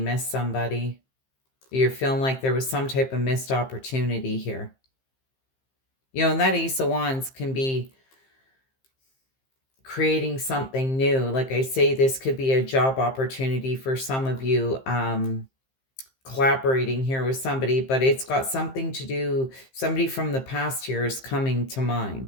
somebody. You're feeling like there was some type of missed opportunity here. And that Ace of Wands can be creating something new. Like I say, this could be a job opportunity for some of you. collaborating here with somebody, but it's got something to do, somebody from the past here is coming to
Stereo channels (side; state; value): right; late; 15 ms